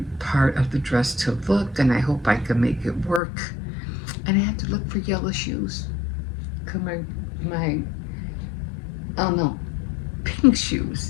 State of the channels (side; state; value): right; drops out; at 3.2 s